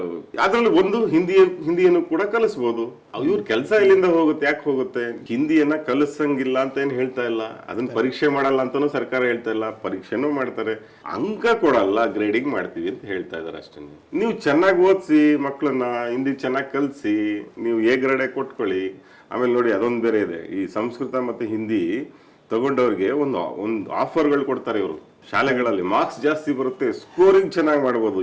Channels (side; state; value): both; identical; correlation 1.00